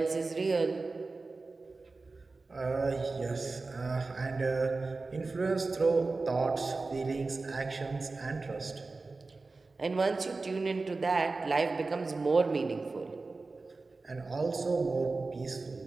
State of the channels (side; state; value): left; quieter; 3.7 dB